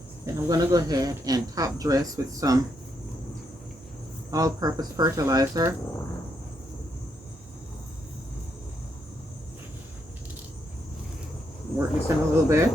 Then I'm going to go ahead and top dress with some all-purpose fertilizer. Work this in a little bit.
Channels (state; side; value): normal; both; correlation 0.78